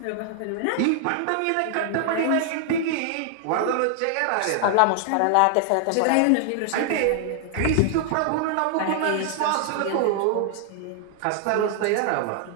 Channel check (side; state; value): both; different; correlation 0.00